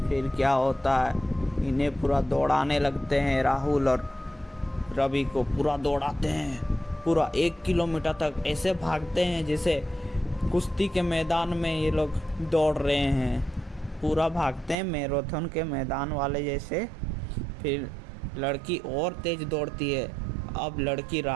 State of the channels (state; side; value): drops out; left; at 14.8 s